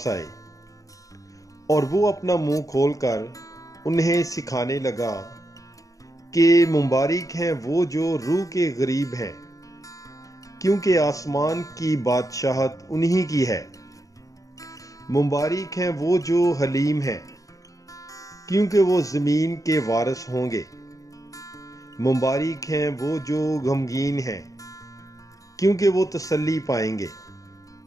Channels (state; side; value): late; right; 0.16 ms